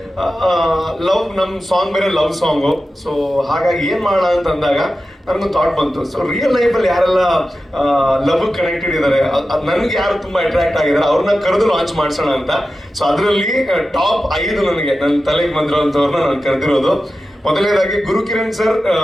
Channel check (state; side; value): normal; both; correlation 0.93